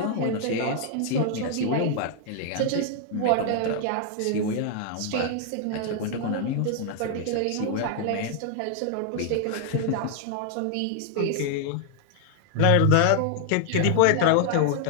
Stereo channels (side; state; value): both; different; correlation 0.00